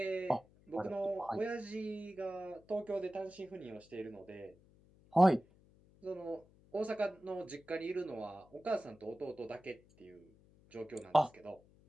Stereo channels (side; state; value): left; noise; hum, 27 dB below the sound